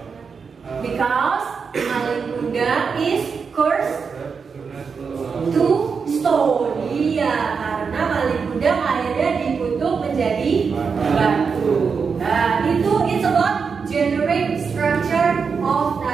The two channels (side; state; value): left; quieter; 5.6 dB